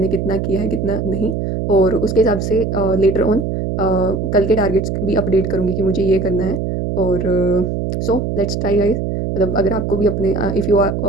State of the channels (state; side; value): noise; right; hum, 2 dB below the sound